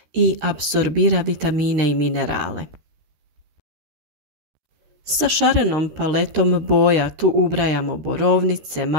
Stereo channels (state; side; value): late; left; 13 ms